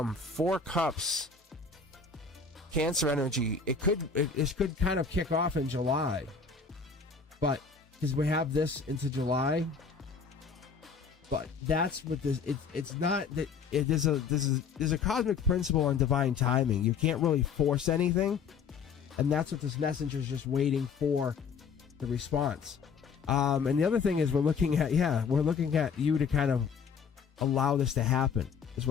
Cups. Cancer energy. It could kind of kick off in July. But, because we have this into July. But that's what this, it's not that, there's a cosmic principle on divine timing. You can't really force anything. And that's what this messenger is just waiting for the response. And the other thing is we're looking at you to kind of allow this to happen, is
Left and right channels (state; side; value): quieter; right; 5.6 dB